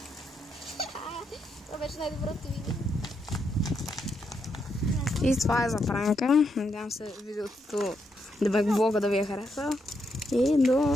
Това беше най-доброто видео. И това е за пранка. Надявам се видеото, блога да ви е хареса. И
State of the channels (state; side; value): normal; both; correlation 0.80